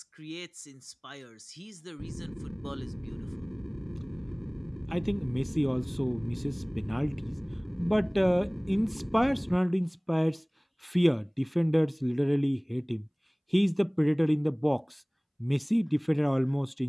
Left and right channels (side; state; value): both; identical; correlation 1.00